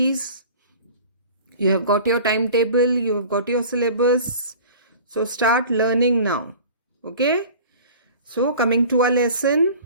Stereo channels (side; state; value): both; inverted; correlation -0.42